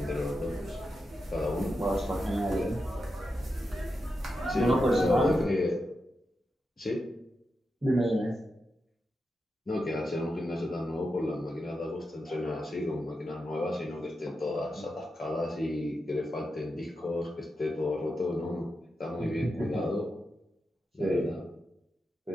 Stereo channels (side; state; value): both; normal; correlation 0.88